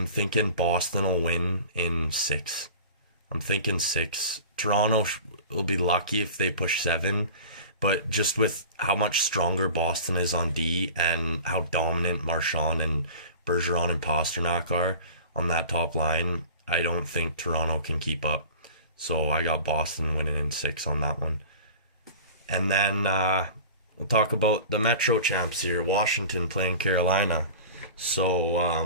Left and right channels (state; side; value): inverted; both; correlation -0.38